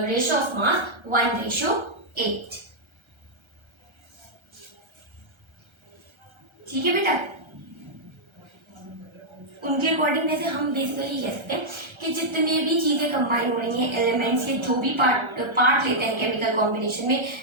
of mass 1:8. ठीक है बेटा, उनके अकॉर्डिंग वैसे हम बेसिकली कह सकते हैं कि जितने भी चीजें कंबाइन हो रही हैं, एलिमेंट्स के जो भी पार्ट लेते हैं केमिकल कॉम्बिनेशन में,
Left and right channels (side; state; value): left; late; 1.3 ms